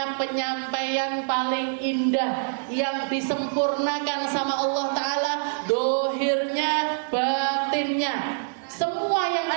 penyampaian paling indah, yang disempurnakan sama Allah Ta'ala dohirnya, batinnya. Semua yang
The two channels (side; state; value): left; silent; digital silence